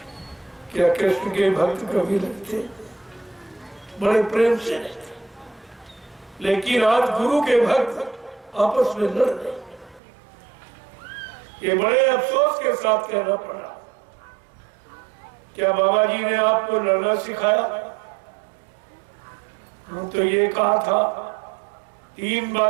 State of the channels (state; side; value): drops out; left; at 10.0 s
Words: क्या कृष्ण के भक्त कभी लड़ते? बड़े प्रेम से रहते। लेकिन आज गुरु के भक्त आपस में लड़ रहे। ये बड़े अफसोस के साथ कहना पड़ा। क्या बाबा जी ने आपको लड़ना सिखाया? हम तो ये कहा था, 3